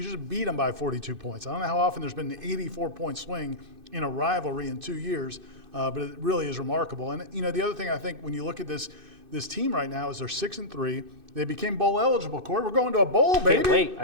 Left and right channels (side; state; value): left; late; 2.6 ms